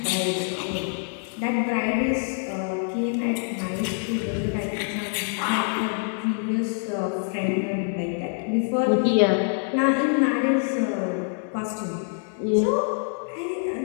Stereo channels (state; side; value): silent; right; 57 dB below the other